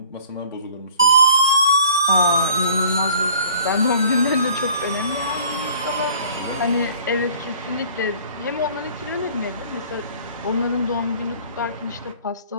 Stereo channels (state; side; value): inverted; both; correlation -0.50